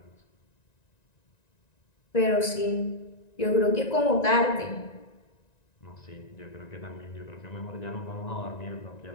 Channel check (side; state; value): right; late; 1.9 ms